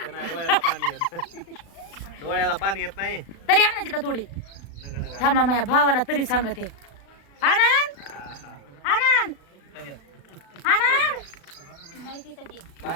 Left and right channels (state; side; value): late; right; 36 ms